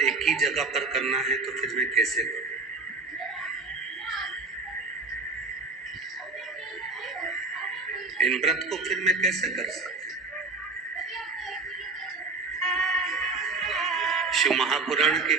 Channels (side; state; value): left; quieter; 3.7 dB